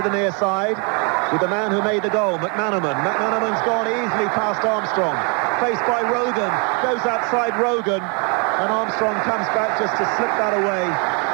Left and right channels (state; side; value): quieter; left; 34.5 dB